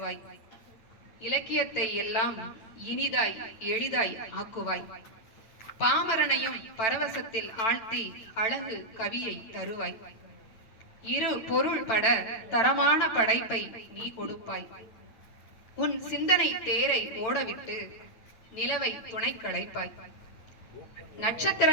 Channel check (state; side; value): late; right; 9.0 ms